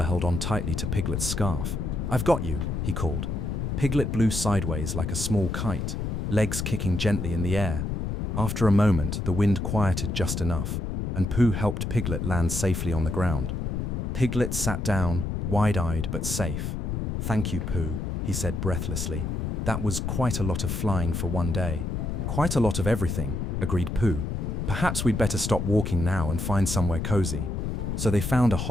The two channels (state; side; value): noise; left; rumble, 2 dB below the sound